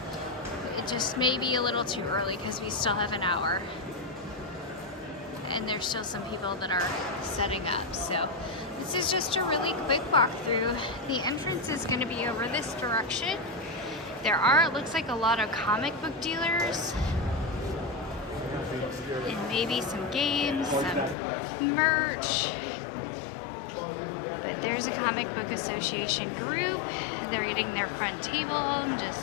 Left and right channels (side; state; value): right; drops out; at 21.2 s